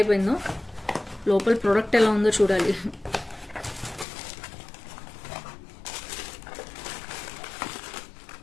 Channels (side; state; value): right; drops out; at 4.0 s